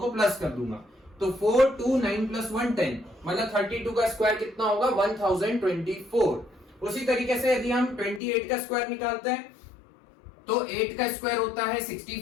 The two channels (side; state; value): right; drops out; at 8.2 s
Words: प्लस कर दूंगा। तो 4 2 9 प्लस 1 10, मतलब 32 का स्क्वायर कितना होगा 1024। उसी तरीके से यदि हम 28 का स्क्वायर निकालते हैं तो 8 का स्क्वायर होता है